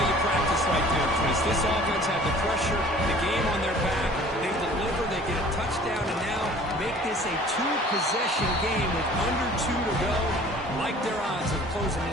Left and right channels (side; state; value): both; normal; correlation 0.49